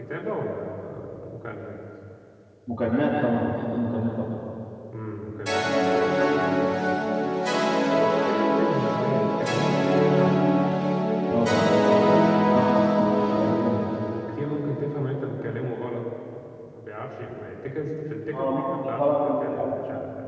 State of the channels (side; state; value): both; identical; correlation 1.00